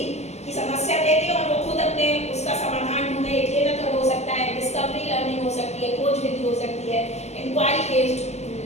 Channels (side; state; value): right; late; 0.32 ms